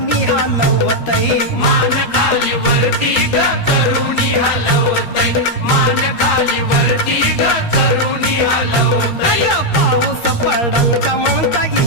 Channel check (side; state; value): right; late; 13 ms